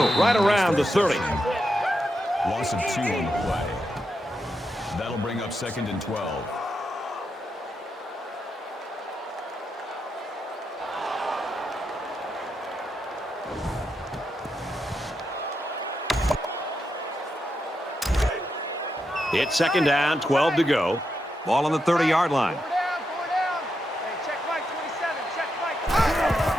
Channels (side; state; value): both; normal; correlation 0.85